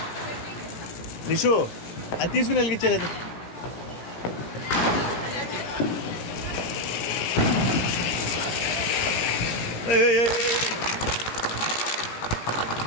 నిషు అది తీసుకుని వెలిగించలేదు.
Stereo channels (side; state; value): right; late; 17 ms